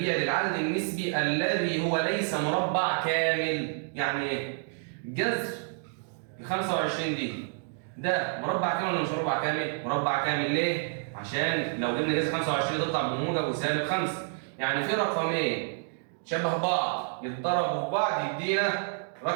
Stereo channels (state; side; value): silent; left; 59 dB below the other